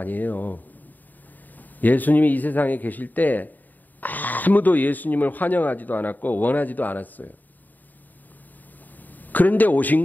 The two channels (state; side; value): late; right; 0.086 ms